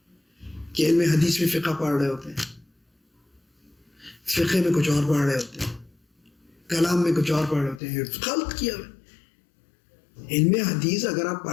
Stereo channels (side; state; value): right; drops out; at 7.8 s